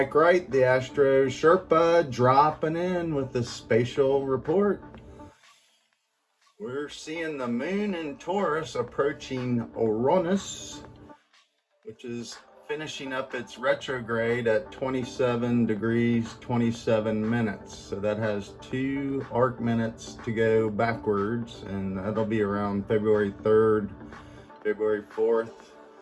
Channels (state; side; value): identical; both; correlation 1.00